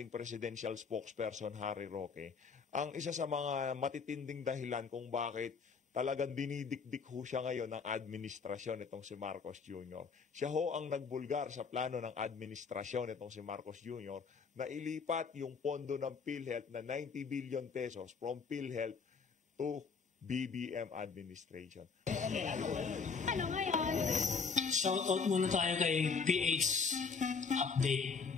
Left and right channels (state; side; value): quieter; right; 5.3 dB